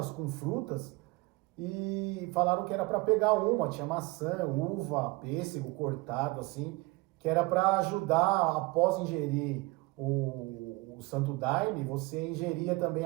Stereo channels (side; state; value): left; quieter; 23.0 dB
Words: com frutas, e falaram que era para pegar uma, tinha maçã, uva, pêssego cortado, assim, que era para ajudar, após ingerir o Santo Daime, você ingeria também